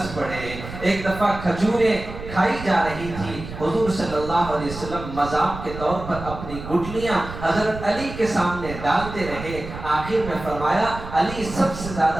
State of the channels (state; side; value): noise; right; rumble, 10 dB below the sound